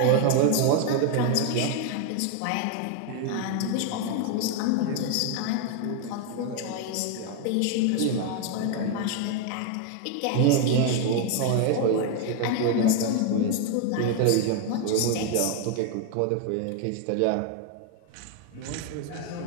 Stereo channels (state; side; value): different; both; correlation 0.01